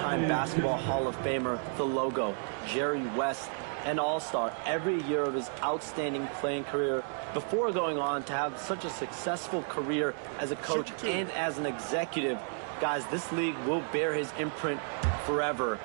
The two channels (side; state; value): left; silent; 56 dB below the other